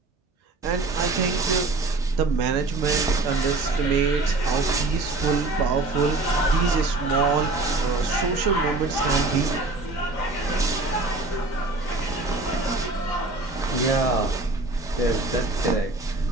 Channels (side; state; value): left; quieter; 3.2 dB